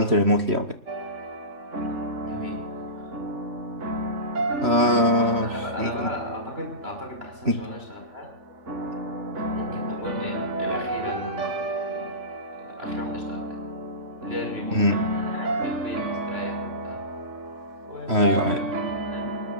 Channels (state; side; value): late; left; 3.1 ms